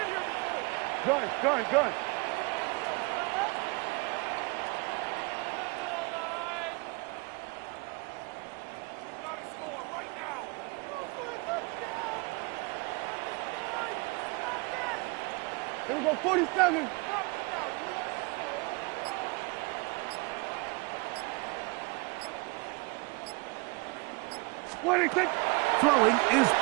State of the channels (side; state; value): left; quieter; 28.2 dB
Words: Gun. Here we go, 47. Throwing is